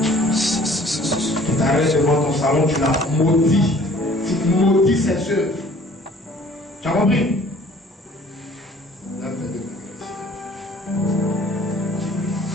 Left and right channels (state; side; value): normal; both; correlation 0.54